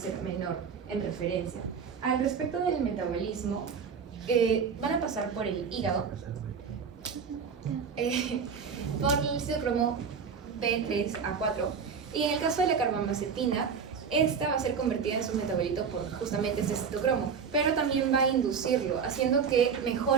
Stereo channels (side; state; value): left; quieter; 6.2 dB